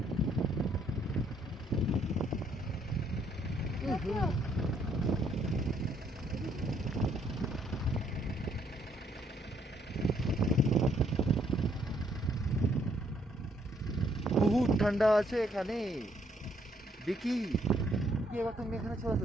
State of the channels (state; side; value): normal; both; correlation 0.69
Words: বহুত ঠান্ডা আছে এখানে। বিকি এবার তুমি এখানে চলে আসো,